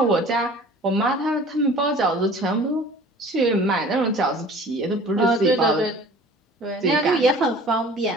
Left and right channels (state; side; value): normal; both; correlation 0.46